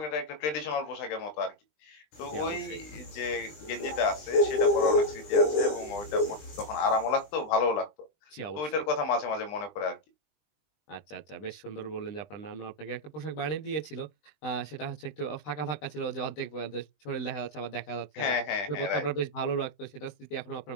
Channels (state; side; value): late; right; 20 ms